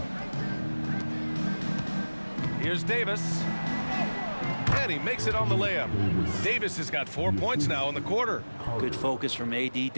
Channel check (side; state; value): both; inverted; correlation -1.00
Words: Here's Davis. And he makes it on the layup. Davis has got 4 points now in the quarter. Good focus from AD,